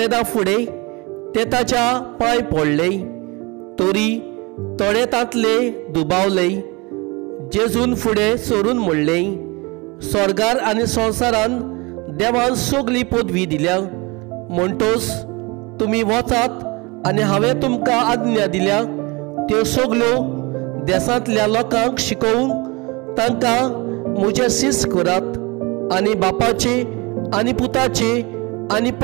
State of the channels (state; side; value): quieter; left; 26.0 dB